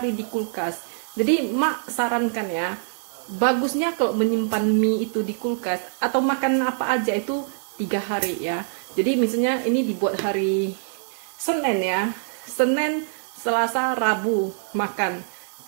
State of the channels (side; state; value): left; silent; digital silence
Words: di kulkas. Jadi Mak sarankan ya, bagusnya kalau menyimpan mie itu di kulkas atau makan apa aja itu 3 hari ya. Jadi misalnya ini dibuat hari Senin ya, Senin, Selasa, Rabu makan,